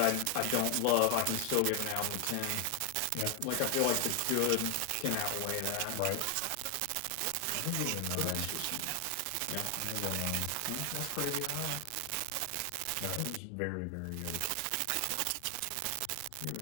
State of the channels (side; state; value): both; different; correlation 0.00